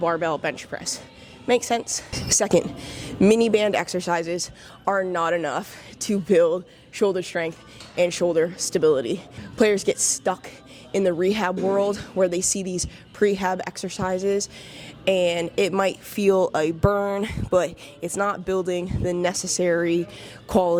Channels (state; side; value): identical; both; correlation 1.00